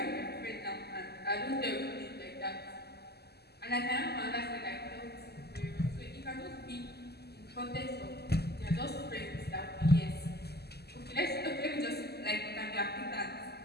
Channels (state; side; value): late; right; 0.47 ms